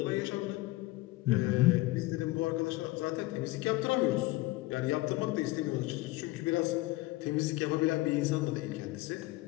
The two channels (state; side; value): quieter; right; 19.4 dB